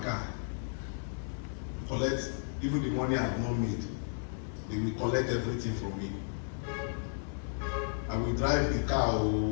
car, collect even the money I have not made. They will collect everything from me. I will drive the car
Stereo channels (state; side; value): silent; right; digital silence